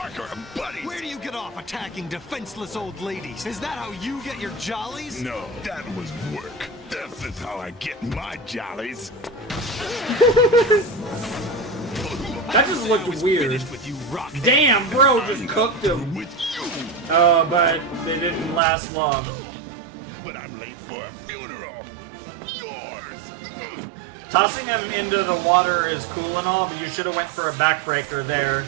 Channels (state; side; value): drops out; left; at 18.6 s